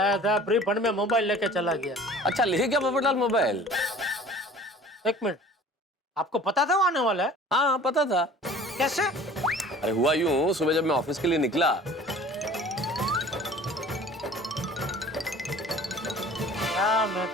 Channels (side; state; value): both; normal; correlation 0.46